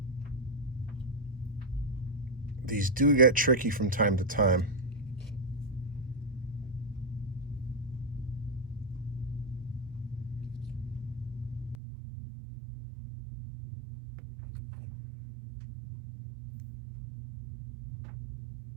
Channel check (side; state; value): left; drops out; at 11.8 s